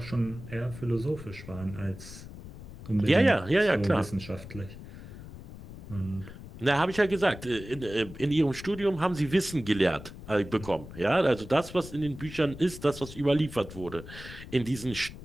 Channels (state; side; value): noise; left; rumble, 14 dB below the sound